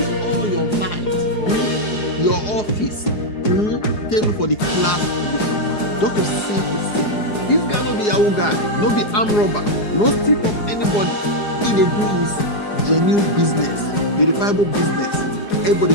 all your might, your office, table for the class of this young man. Just to save his sin. This guy no be Yahoo guy, no be armed robber, no steal from anybody. He dey do his genuine business, verifiable business. Everybody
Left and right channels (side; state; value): right; late; 4.8 ms